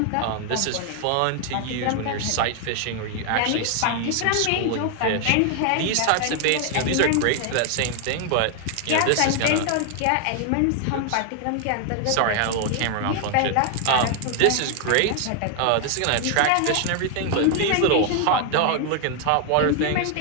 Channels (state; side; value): different; both; correlation 0.00